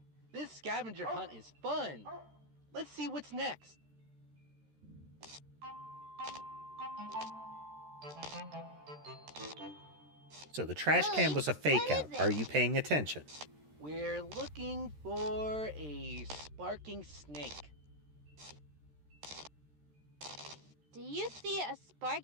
This scavenger hunt is fun. Let's see what's next. So the trash can was a fake out. Are you paying attention? We're looking for a sparking snake. Do you see a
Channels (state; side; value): late; left; 13 ms